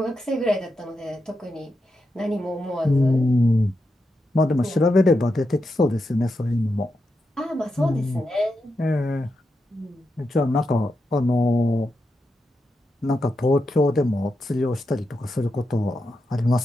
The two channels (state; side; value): normal; both; correlation 0.87